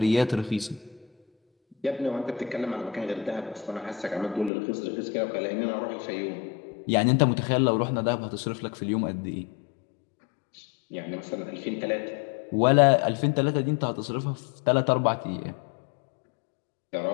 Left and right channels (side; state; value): right; drops out; at 4.5 s